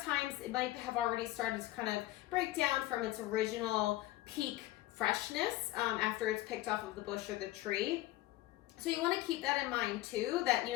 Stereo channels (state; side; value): quieter; right; 16.8 dB